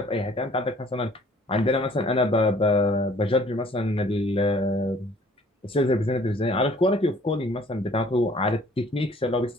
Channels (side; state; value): both; normal; correlation 0.56